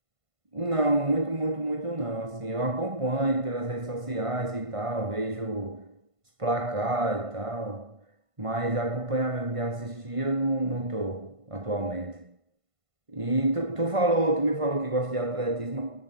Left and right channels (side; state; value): left; late; 1.5 ms